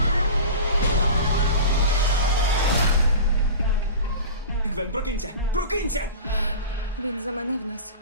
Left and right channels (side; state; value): both; inverted; correlation -0.33